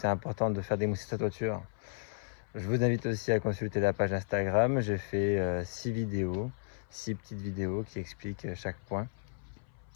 important de faire démousser sa toiture, je vous invite aussi à consulter la page Instagram. J'ai fait 6 vidéos, 6 petites vidéos qui expliquent chaque point.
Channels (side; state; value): right; silent; 55 dB below the other